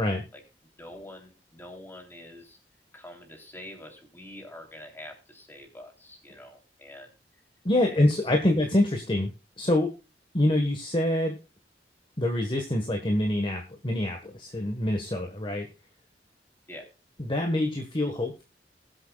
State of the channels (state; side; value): normal; both; correlation 0.77